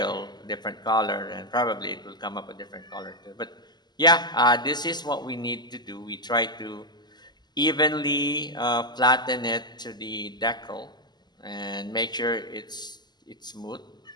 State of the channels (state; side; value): late; right; 0.21 ms